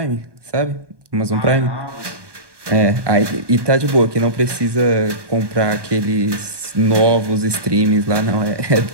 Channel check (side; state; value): left; late; 1.2 ms